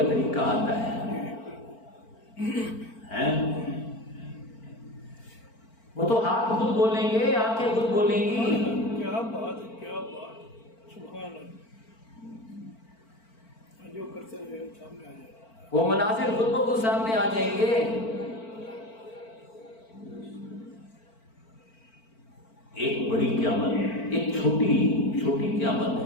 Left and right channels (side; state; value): right; late; 4.4 ms